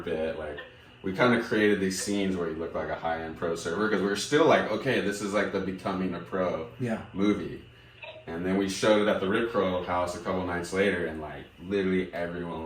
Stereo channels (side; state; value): both; identical; correlation 1.00